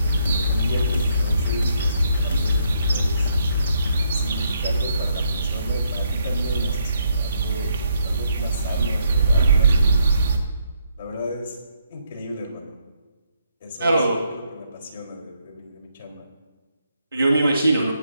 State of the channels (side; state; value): both; inverted; correlation -0.74